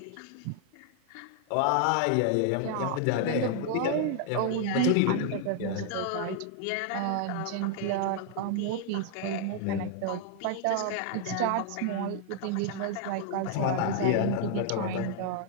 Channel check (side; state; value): both; different; correlation 0.00